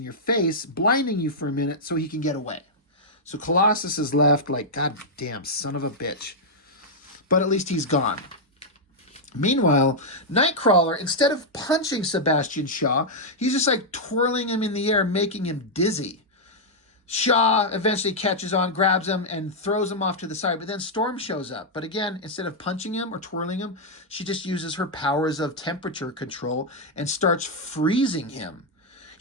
your face, blinding you for a minute so he can get away. So Colossus is left like, God damn, son of a bitch. But at least he's gone. Meanwhile, Nightcrawler, instead of punching Sebastian Shaw, he's just like twirling him in the air, making him dizzy. Shaw eventually catches on, grabs him, and throws him off to the side. But then Storm shows up. But again, instead of punching him or twirling him, she just uses her powers of temperature control and starts freezing him.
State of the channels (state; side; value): normal; both; correlation -0.05